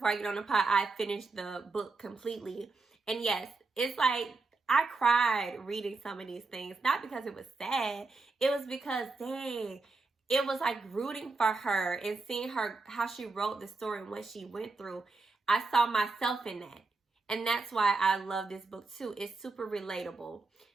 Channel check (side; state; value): left; quieter; 3.7 dB